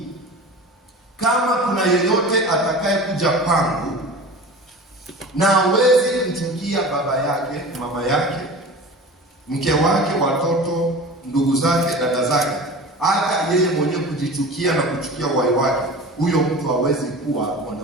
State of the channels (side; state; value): both; normal; correlation 0.36